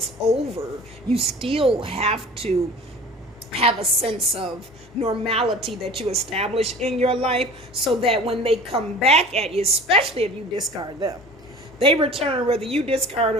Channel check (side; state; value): both; normal; correlation 0.42